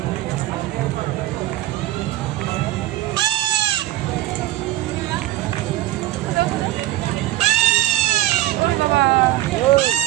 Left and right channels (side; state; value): left; quieter; 15.7 dB